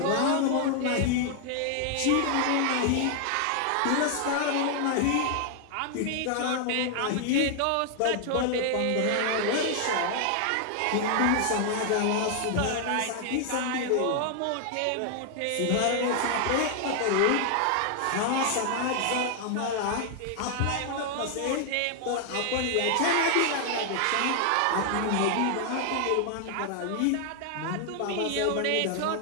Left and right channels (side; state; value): both; different; correlation 0.00